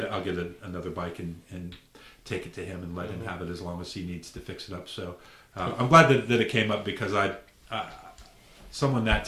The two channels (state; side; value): identical; both; correlation 1.00